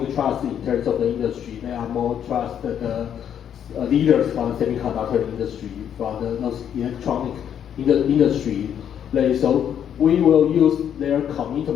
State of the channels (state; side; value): quieter; right; 9.1 dB